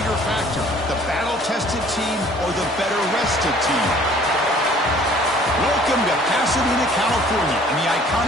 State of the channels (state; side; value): normal; both; correlation 0.54